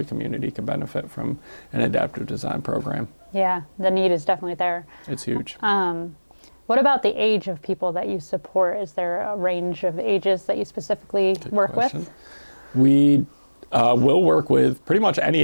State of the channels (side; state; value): both; inverted; correlation -1.00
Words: community can benefit from an adaptive design program. Yeah, the need is definitely there. It's huge. What about the age of people that you support? Is there a range of ages that you specifically work with? We will work with pretty much any